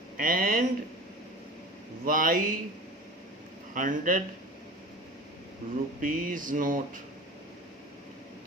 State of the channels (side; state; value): both; normal; correlation 0.37